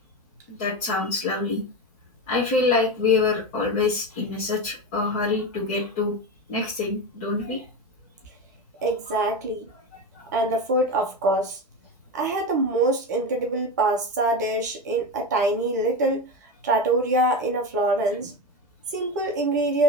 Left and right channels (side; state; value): both; normal; correlation 0.19